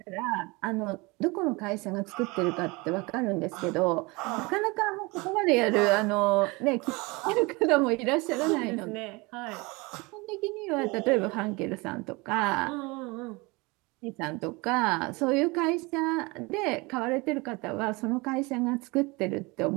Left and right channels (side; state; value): left; quieter; 25.5 dB